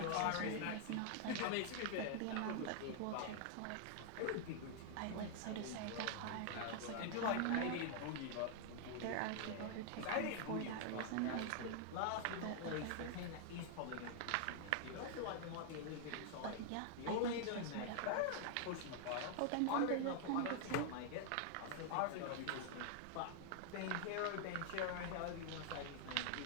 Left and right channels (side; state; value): both; different; correlation 0.00